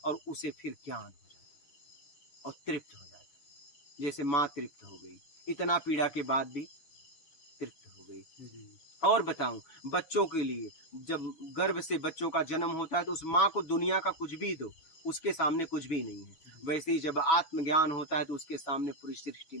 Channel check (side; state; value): right; late; 6.2 ms